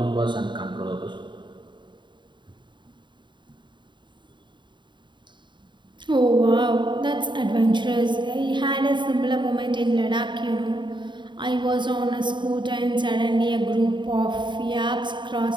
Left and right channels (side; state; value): left; late; 0.23 ms